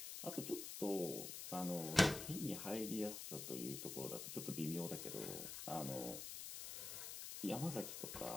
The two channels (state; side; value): noise; left; hiss, 6 dB below the sound